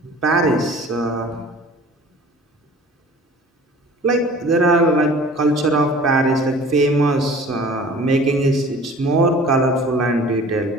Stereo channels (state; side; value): normal; both; correlation 0.46